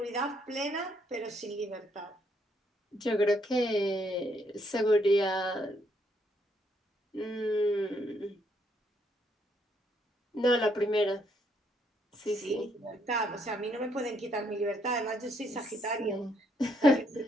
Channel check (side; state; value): both; normal; correlation 0.72